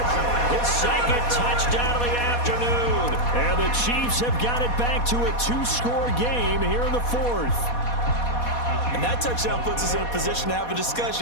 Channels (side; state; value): right; late; 4.2 ms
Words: his second touchdown of the afternoon. And the Chiefs have got it back to a two-score game here in the fourth. And that touchdown puts us in a position to have a